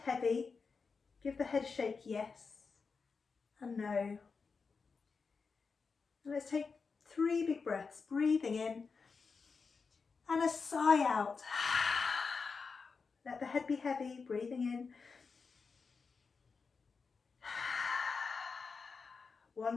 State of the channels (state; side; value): quieter; right; 4.9 dB